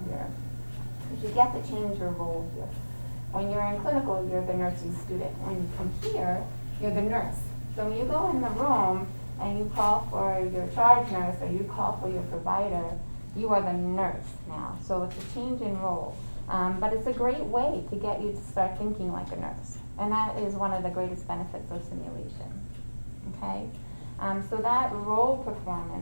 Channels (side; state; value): both; inverted; correlation -1.00